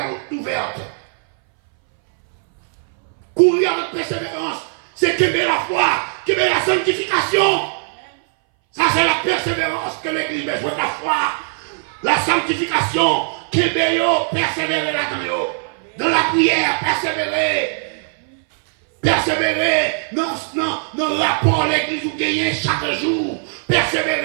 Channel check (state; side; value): silent; left; 61 dB below the other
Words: ouverte. Courir avec persévérance, c'est qu'aimer la foi, qu'aimer la sanctification. Ça, c'est la persévérance que l'Église a besoin de la foi. La sanctification, qu'aimer, persévérer là-dedans. Dans la prière, persévérer. Persévérer dans le rapport l'Église où gagner chaque jour.